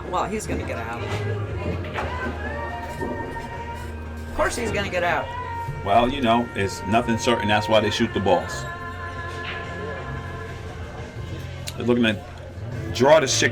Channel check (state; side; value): identical; both; correlation 1.00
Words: Well, he's gonna get out. Of course, he's gonna get out. Well, you know, it's nothing certain. That's why they shoot the balls. They're looking to draw the